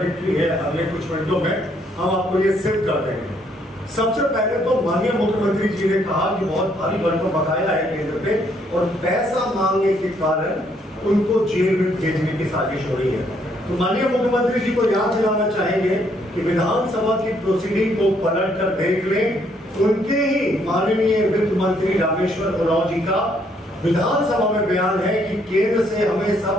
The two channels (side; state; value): both; normal; correlation 0.70